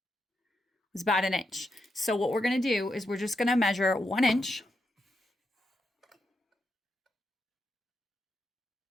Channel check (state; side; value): normal; both; correlation 0.84